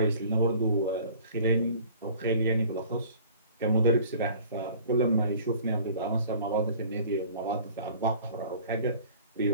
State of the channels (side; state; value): both; inverted; correlation -0.48